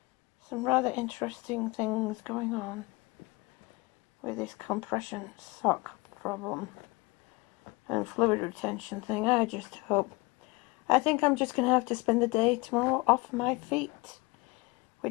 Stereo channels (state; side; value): quieter; right; 24.8 dB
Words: rather interesting things going on with this compression sock problem and fluid retention thing. I think I'm just going to have to spend the day tomorrow off my feet,